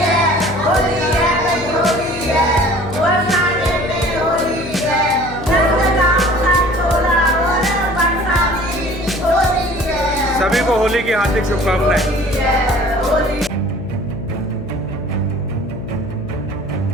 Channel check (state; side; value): noise; left; hum, 11 dB below the sound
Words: सभी को होली की हार्दिक शुभकामनाएं।